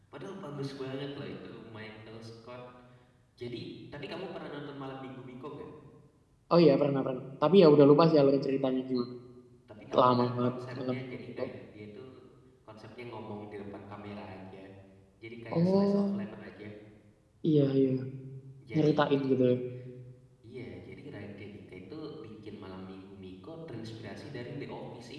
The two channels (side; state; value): both; identical; correlation 1.00